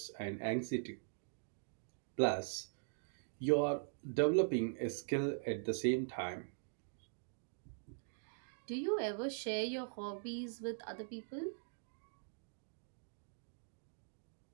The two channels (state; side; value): silent; left; digital silence